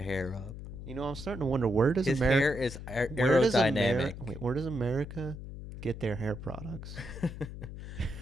hair up. I'm starting to wonder, where does His America hair is aerodynamic. where does America get their hair products?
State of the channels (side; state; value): left; noise; hum, 10 dB below the sound